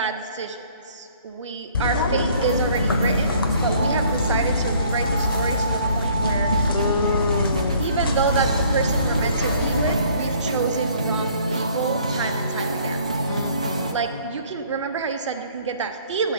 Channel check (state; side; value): inverted; both; correlation -0.58